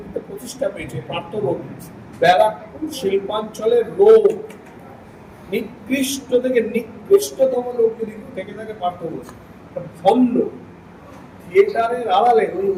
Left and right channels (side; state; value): both; identical; correlation 1.00